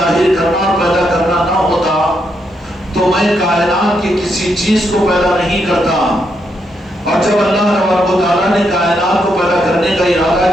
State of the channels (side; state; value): both; normal; correlation 0.79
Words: کرنا اور پیدا کرنا نہ ہوتا تو میں کائنات کی کسی چیز کو پیدا نہیں کرتا. اور جب اللہ تبارک و تعالیٰ نے کائنات کو پیدا کرنے کا ارادہ